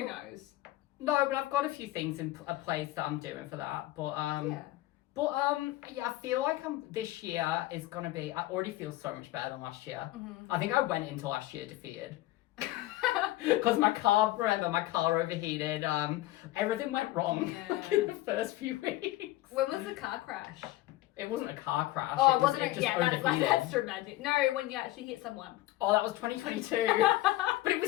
knows? No, but I've got a few things in a place that I'm doing for that. But yeah, I feel like this year is gonna be. I already feel so much better than last year. I think I went into last year defeated. Because my car overheated. Everything went wrong in the first few weeks. When was the car crash? It wasn't a car crash. Oh, it wasn't. It just overheated. That's dramatic. No, when you actually hit someone. Oh, that was 2022. But it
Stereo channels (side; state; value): right; quieter; 16.9 dB